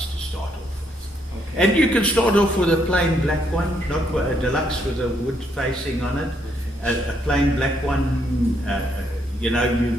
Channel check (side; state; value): both; normal; correlation 0.74